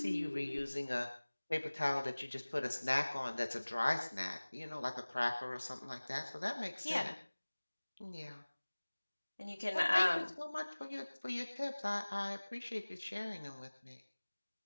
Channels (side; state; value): both; inverted; correlation -1.00